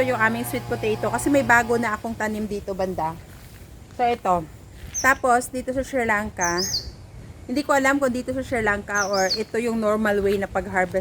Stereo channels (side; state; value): both; identical; correlation 1.00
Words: yung aming sweet potato kasi may bago na akong tanim dito banda. So ito. Tapos dito sa Sri Lanka, hindi ko alam kung dito sa Sri Lanka or ito yung normal way na